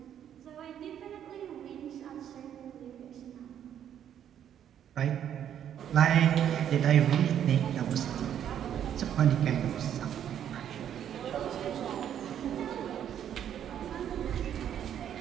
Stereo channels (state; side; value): quieter; left; 9.8 dB